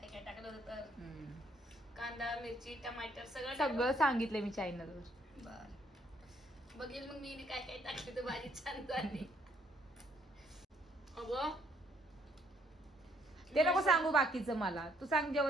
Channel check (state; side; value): normal; both; correlation 0.68